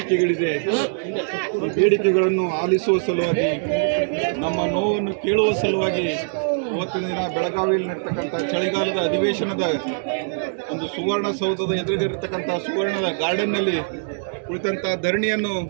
ಈ ಬೇಡಿಕೆಗಳನ್ನು ಆಲಿಸುವ ಸಲುವಾಗಿ ನಮ್ಮ ನೋವನ್ನು ಕೇಳುವ ಸಲುವಾಗಿ ಇವತ್ತಿನ ದಿನ ಬೆಳಗಾವಿಯಲ್ಲಿ ನಡೀತಕ್ಕಂಥ ಚಳಿಗಾಲದ ಅಧಿವೇಶನದ ಒಂದು ಸುವರ್ಣಸೌಧದ ಎದುರಿಗಿರತಕ್ಕಂಥ ಸುವರ್ಣದ ಗಾರ್ಡನ್ನಲ್ಲಿ ಕುಳಿತಂಥ ಧರಣಿಯನ್ನು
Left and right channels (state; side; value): silent; left; digital silence